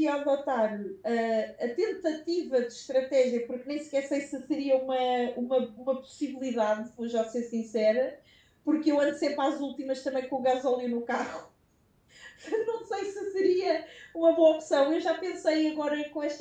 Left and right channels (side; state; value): both; identical; correlation 1.00